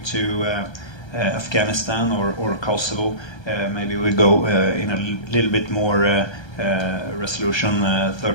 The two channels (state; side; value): late; right; 1.3 ms